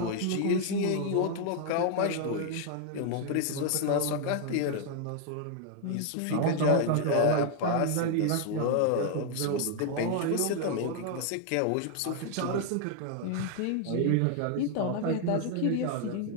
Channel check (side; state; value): both; different; correlation 0.00